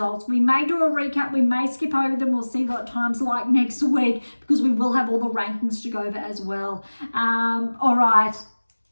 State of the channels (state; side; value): inverted; both; correlation -1.00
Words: We may do a recap. We may skip over them. We'll see what time's like next week, because we will have all the rankings to go over as well. All right.